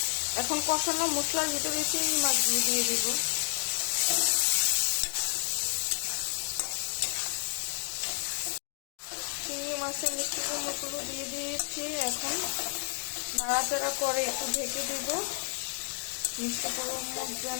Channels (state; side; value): silent; right; 57 dB below the other